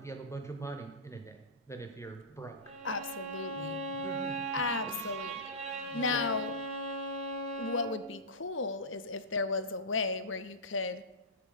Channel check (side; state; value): both; normal; correlation -0.20